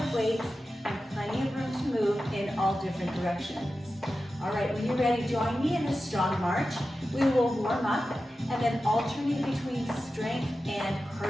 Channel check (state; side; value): normal; both; correlation 0.93